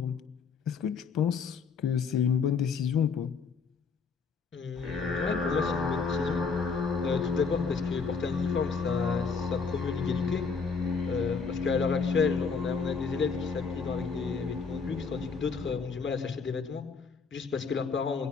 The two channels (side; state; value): right; quieter; 5.2 dB